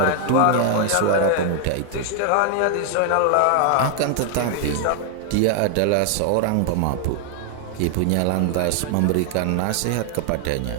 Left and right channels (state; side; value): different; both; correlation 0.00